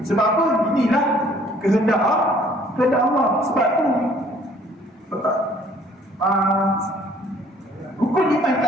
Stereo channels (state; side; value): normal; both; correlation 0.58